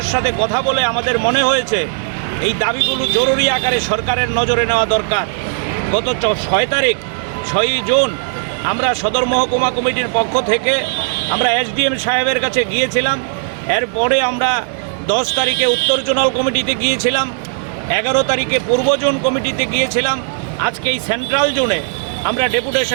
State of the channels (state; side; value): silent; left; digital silence